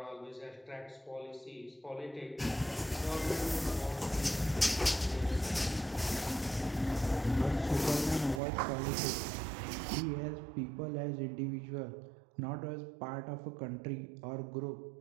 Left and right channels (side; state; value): left; drops out; at 8.4 s